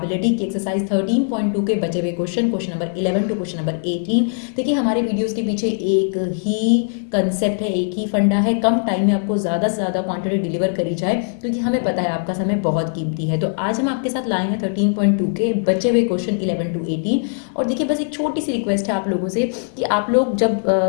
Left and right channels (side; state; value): right; silent; digital silence